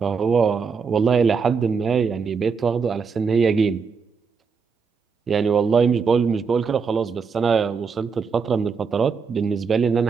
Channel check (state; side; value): quieter; left; 5.6 dB